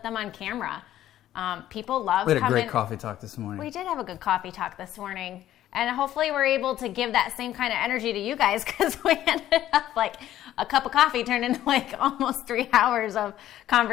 them on camera. People love coming. We had a coming. great coffee talk this morning. We did have a good coffee talk this morning. And hopefully we're able to give that same kind of energy to you guys, because we ended up like a cup of coffee turned into like almost 3 hours of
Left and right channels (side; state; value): right; quieter; 12.7 dB